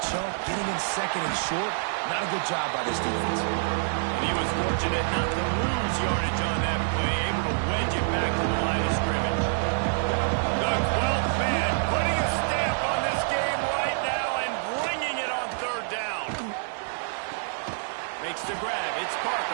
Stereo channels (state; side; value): silent; left; 60 dB below the other